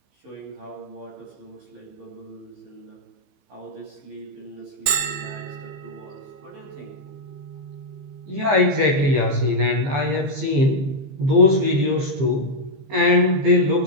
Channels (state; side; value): late; left; 15 ms